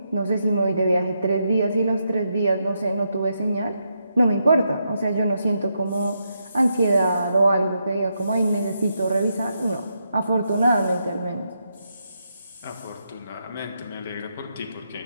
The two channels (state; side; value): inverted; both; correlation -0.82